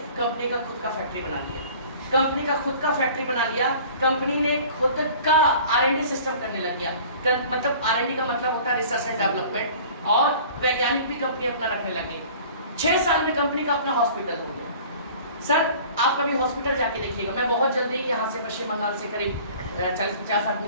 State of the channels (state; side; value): inverted; both; correlation -0.46